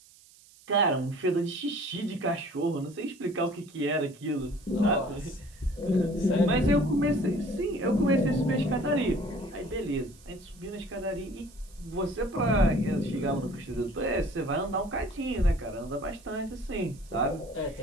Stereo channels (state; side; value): noise; right; hiss, 25 dB below the sound